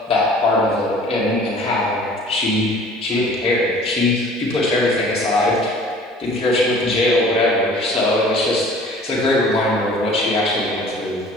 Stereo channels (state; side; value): normal; both; correlation 0.49